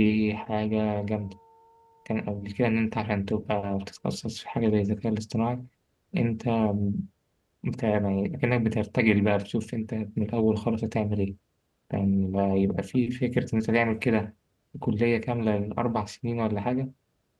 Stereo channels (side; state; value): both; identical; correlation 1.00